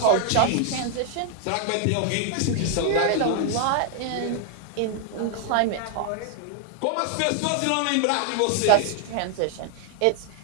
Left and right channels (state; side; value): different; both; correlation 0.00